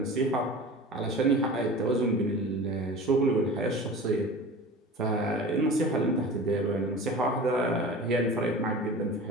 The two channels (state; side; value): normal; both; correlation 0.36